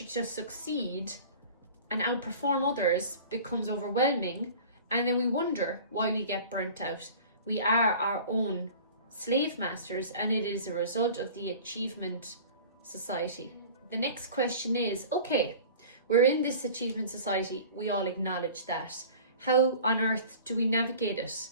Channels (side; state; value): both; inverted; correlation -0.42